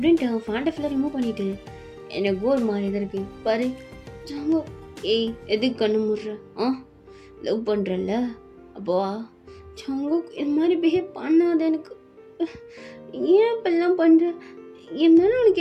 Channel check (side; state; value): both; identical; correlation 1.00